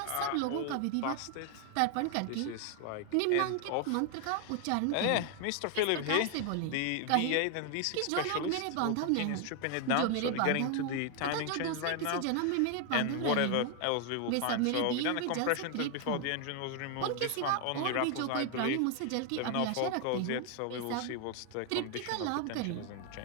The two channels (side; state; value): both; different; correlation 0.00